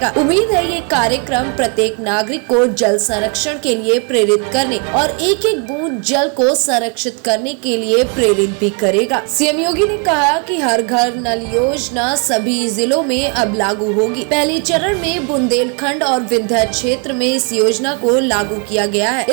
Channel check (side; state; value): left; quieter; 36.9 dB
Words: उम्मीद है ये कार्यक्रम प्रत्येक नागरिक को जल संरक्षण के लिए प्रेरित करने और एक एक बूंद जल को संरक्षित करने के लिए प्रेरित भी करेगा। सीएम योगी ने कहा कि हर घर नल योजना सभी जिलों में अब लागू होगी। पहले चरण में बुंदेलखंड और विंध्य क्षेत्र में इस योजना को लागू किया गया है।